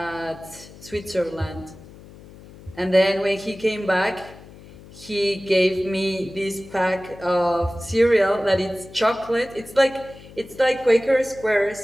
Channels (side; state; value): left; noise; hum, 19 dB below the sound